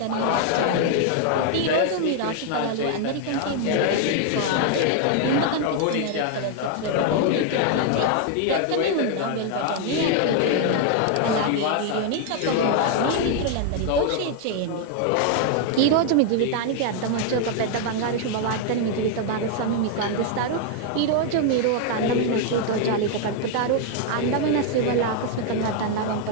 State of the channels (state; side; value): different; both; correlation 0.00